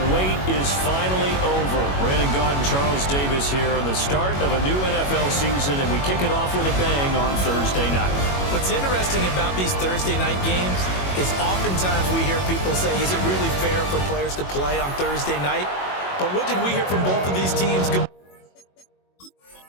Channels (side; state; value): right; late; 21 ms